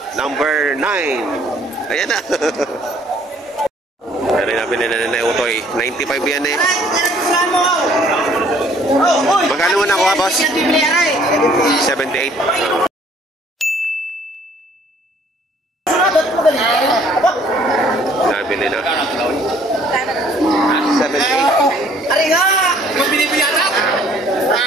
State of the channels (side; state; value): both; normal; correlation 0.59